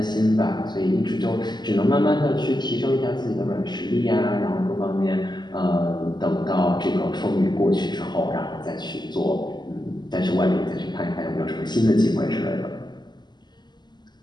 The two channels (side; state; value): right; late; 0.21 ms